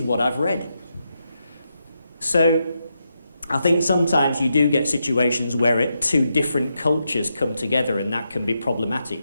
what I've read. So I think sometimes you do get situations where two different cultures come together, and that can be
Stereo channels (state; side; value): inverted; both; correlation -0.84